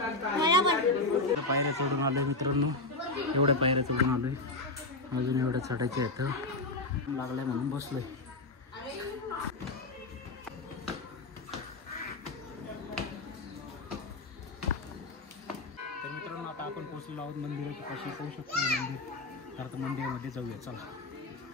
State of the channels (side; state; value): right; quieter; 3.0 dB